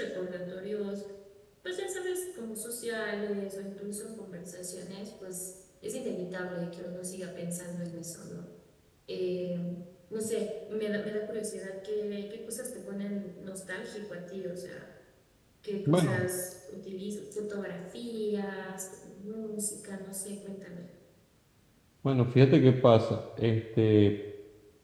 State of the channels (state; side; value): identical; both; correlation 1.00